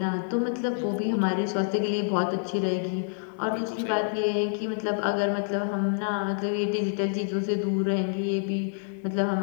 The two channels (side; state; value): right; silent; digital silence